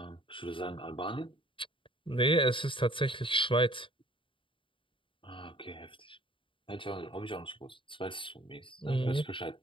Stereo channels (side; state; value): right; late; 0.25 ms